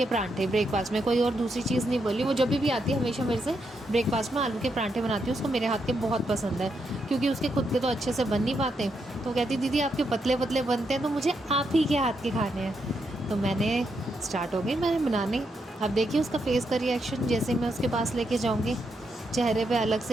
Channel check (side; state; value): both; normal; correlation 0.81